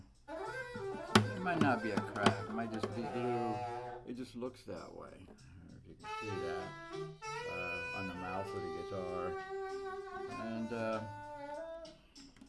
It might not be a crack. It might just be glue. It just looks that way. I don't know if you can see that on the mouth of the guitar. And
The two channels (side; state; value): both; identical; correlation 1.00